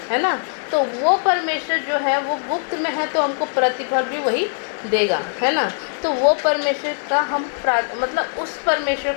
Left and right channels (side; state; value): right; silent; 65 dB below the other